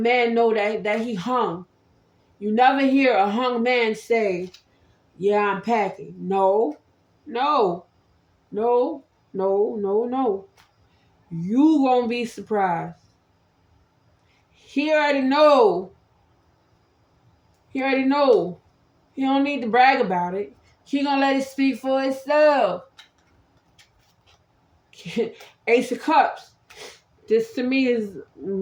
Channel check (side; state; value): both; identical; correlation 1.00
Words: know that he hung. You never hear a hung man say, "Yeah, I'm packing." No, no, no, no, no, no. You gonna be surprised. He already know. He already know. He don't need to brag about it. He gonna let it speak for itself. Ace of Cups. This to me is